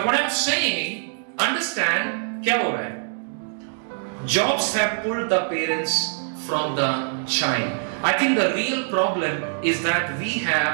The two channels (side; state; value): left; silent; digital silence